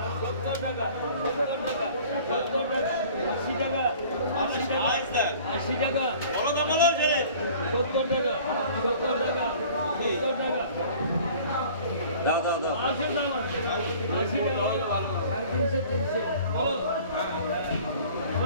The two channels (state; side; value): inverted; both; correlation -0.48